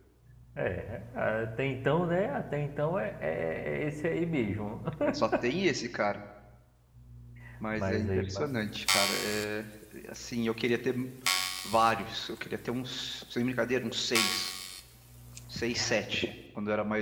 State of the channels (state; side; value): identical; both; correlation 1.00